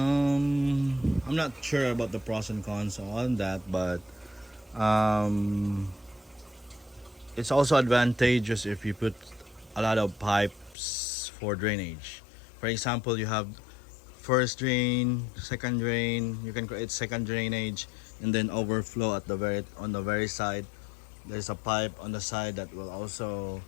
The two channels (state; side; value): drops out; right; at 10.8 s